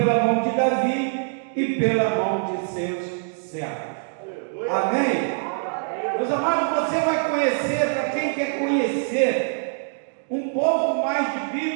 mão de Davi e pela mão de seus servos. Amém? Meus amados, você vai conhecer, para quem quer conhecer um pouco mais de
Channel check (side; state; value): left; silent; digital silence